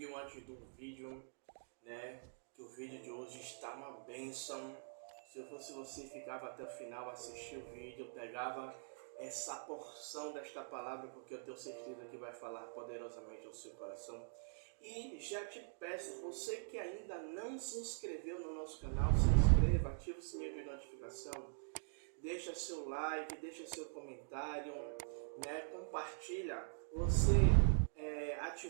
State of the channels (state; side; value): silent; left; digital silence